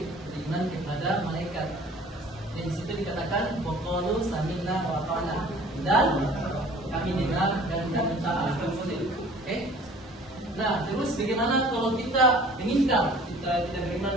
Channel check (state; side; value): normal; both; correlation 0.49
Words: beriman kepada malaikat. Dan di situ dikatakan waqalu sami'na wa ata'na, dan kami dengar dan kami taat. Oke? Nah, terus bagaimana kalau kita meninggal, kita tidak beriman